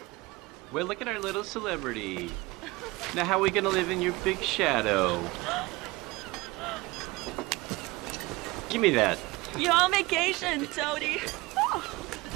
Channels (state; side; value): quieter; left; 22.1 dB